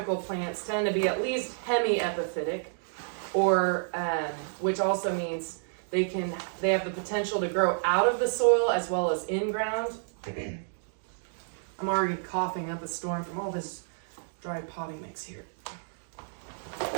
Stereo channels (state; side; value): silent; left; digital silence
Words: plants tend to be at least hemiepiphytic, or which also means they have the potential to grow out of the soil as well as in ground. I'm already coughing up a storm from all this dry potting mix here.